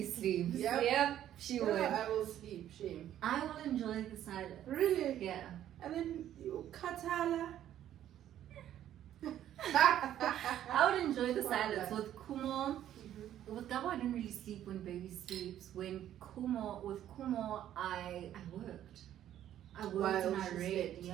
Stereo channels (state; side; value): quieter; left; 11.5 dB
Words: sleeps. Yep. She Yeah, would. I will sleep, shame. I will enjoy the silence. Really? Yeah. And then you katala. I would enjoy the Wow, silence. yeah. With Kumo, with Gabo, I didn't really sleep when baby sleeps. With Kumo, I worked. I worked While and I she read. slept.